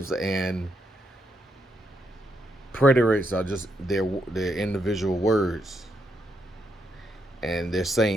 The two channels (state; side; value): normal; both; correlation 0.79